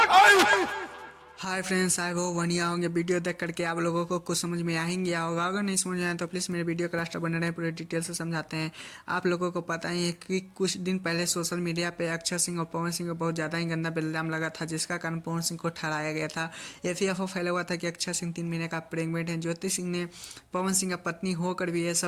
हाय फ्रेंड्स, आई होप बढ़िया होंगे। वीडियो देख करके आप लोगों को कुछ समझ में आ ही गया होगा। अगर नहीं समझ में आया तो प्लीज़ मेरे वीडियो का लास्ट बने रहे, पूरे डिटेल से समझाते हैं। आप लोगों को पता ही है कि कुछ दिन पहले सोशल मीडिया पे अक्षय सिंह और पवन सिंह को बहुत ज़्यादा ही गंदा इल्ज़ाम लगा था, जिसका कारण पवन सिंह को ठहराया गया था। FAFO फैला हुआ था कि अक्षय सिंह 3 महीने का प्रेग्नेंट है। ज्योति सिंह ने पवन सिंह का पत्नी होकर भी ये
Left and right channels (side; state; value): both; identical; correlation 1.00